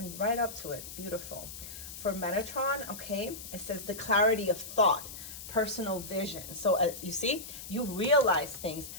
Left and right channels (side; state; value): left; noise; hiss, 11 dB below the sound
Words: right up to it. Beautiful. For Metatron, okay, it says the clarity of thought, personal vision. So you see, you realize things,